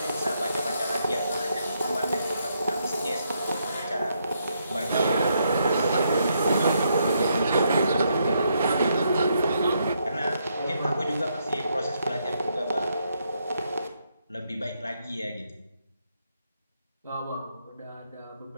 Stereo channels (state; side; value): inverted; both; correlation -0.76